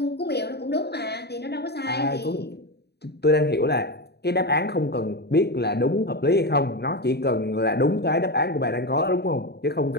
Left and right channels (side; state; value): right; late; 0.48 ms